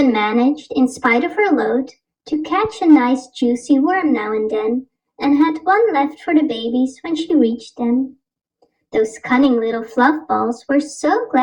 managed, in spite of her load, to catch a nice juicy worm now and then, and had one left for the babies when she reached them. Those cunning little fluff balls were so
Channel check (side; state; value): both; identical; correlation 1.00